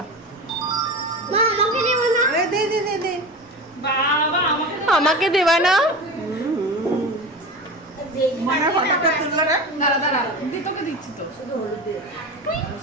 আমাকে দেবা না?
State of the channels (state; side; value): normal; both; correlation 0.28